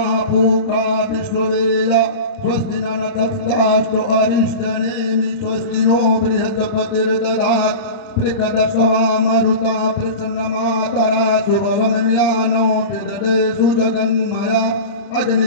पूषा विश्ववेदा स्वस्ति न नक्षत्रास्तु अरिष्टनेमि स्वस्ति नो बृहस्पतिर्दधात् प्रकदशवा मरुता प्रसन्नमातरा शुभवमन्यानो विदधे सुजगन्मया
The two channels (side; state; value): right; late; 30 ms